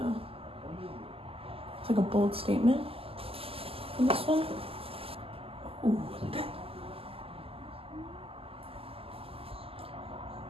it's like a bold statement in this one. Ooh, look at that.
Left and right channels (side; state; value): left; late; 0.28 ms